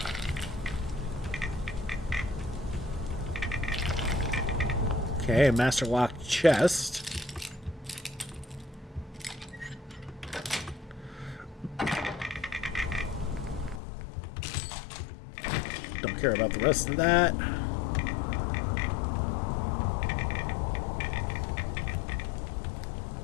Okay, Master Lock Chest. Don't care about the rest of that.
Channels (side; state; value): right; drops out; at 13.8 s